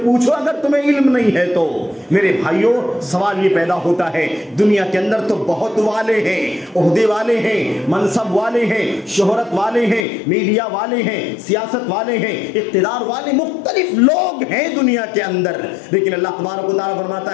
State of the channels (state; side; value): drops out; right; at 10.1 s